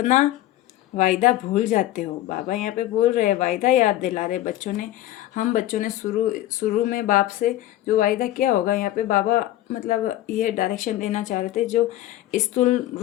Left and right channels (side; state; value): right; quieter; 14.7 dB